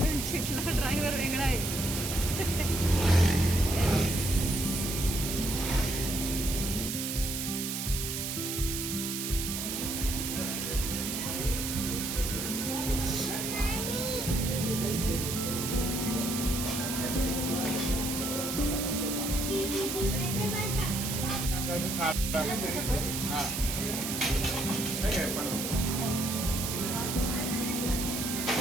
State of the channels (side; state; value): right; noise; hiss, 3 dB below the sound